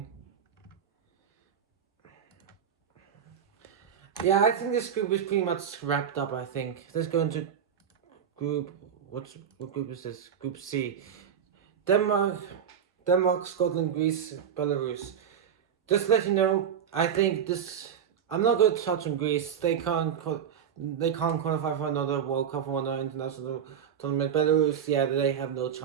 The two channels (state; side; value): quieter; left; 8.2 dB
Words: Yeah, I think this group is pretty much wrapped up. I think let's go into group. What group is this? Group C. Denmark, Scotland, Greece, Belarus. Just to let you know, I think this. I'm not going to touch on Greece. They can't. They can't qualify for another World Cup or another international tournament. Belarus, yeah, they have no